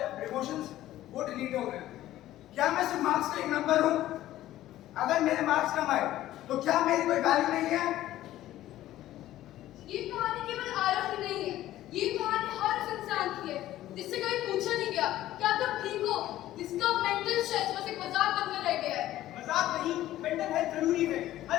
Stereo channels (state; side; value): quieter; right; 14.2 dB